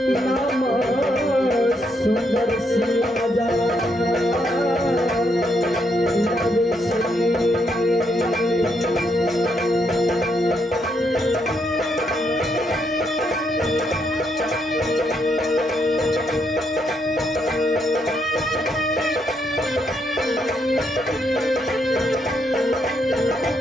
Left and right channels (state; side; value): normal; both; correlation 0.76